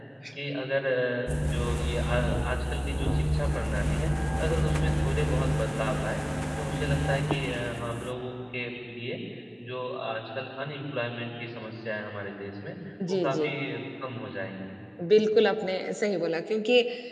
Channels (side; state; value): both; identical; correlation 1.00